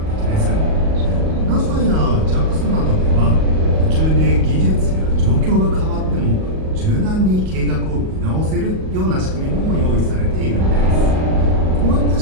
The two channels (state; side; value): late; left; 38 ms